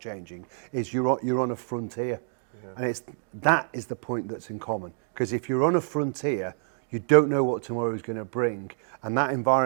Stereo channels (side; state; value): left; silent; digital silence